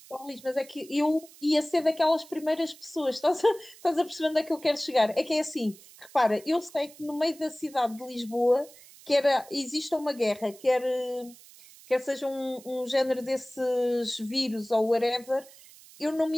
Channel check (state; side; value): noise; right; hiss, 22 dB below the sound